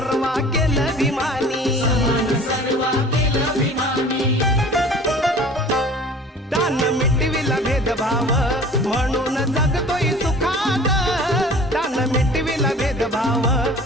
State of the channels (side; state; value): both; normal; correlation 0.45